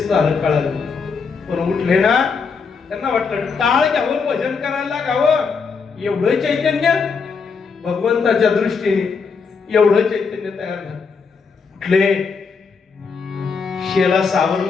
झालं कळालं. पण उठले ना, त्यांना वाटलं टाळ घ्यावं, भजन करायला लागावं. एवढं चैतन्य भगवंताच्या दृष्टीने, एवढं चैतन्य तयार झालं. उठले, शेला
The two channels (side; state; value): right; quieter; 5.3 dB